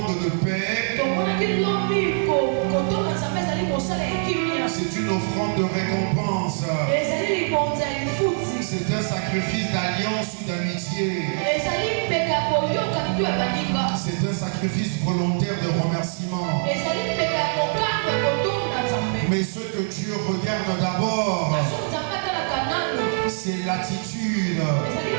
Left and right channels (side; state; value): left; silent; 63 dB below the other